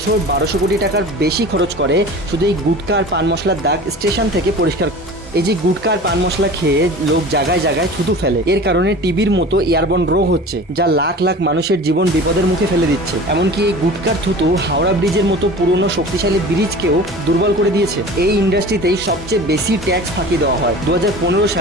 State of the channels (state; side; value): normal; both; correlation 0.38